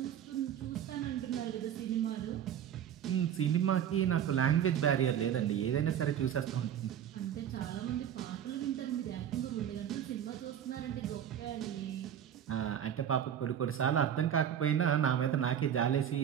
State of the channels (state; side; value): quieter; left; 9.6 dB